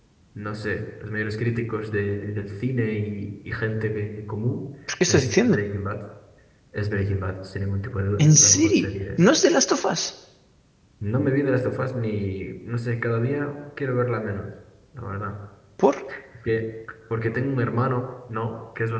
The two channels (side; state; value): both; identical; correlation 1.00